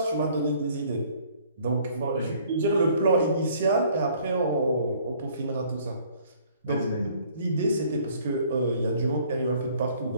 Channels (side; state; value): both; inverted; correlation -0.58